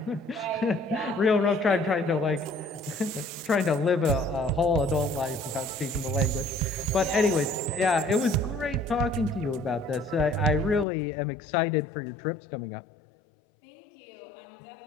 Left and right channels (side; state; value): right; drops out; at 10.9 s